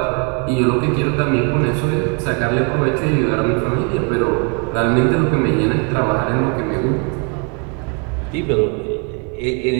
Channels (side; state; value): left; quieter; 36.2 dB